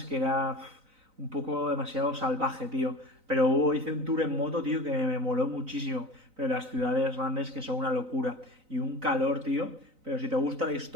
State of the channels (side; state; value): left; late; 3.9 ms